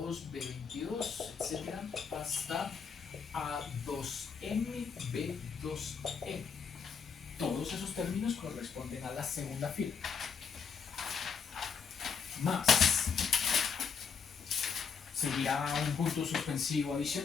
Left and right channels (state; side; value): quieter; right; 6.1 dB